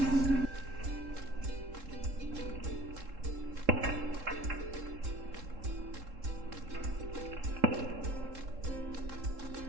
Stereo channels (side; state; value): left; late; 3.7 ms